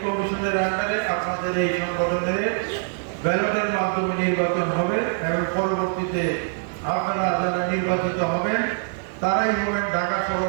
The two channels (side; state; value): left; silent; 63 dB below the other